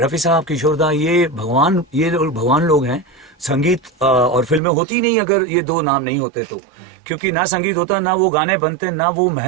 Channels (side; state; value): left; drops out; at 4.6 s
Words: साहब, किशोर दा, ये भगवान लोग हैं। संगीत और फिल्में होती नहीं अगर ये दो नाम नहीं होते तो, क्योंकि ना संगीत होता, ना वो गाने बनते, ना वो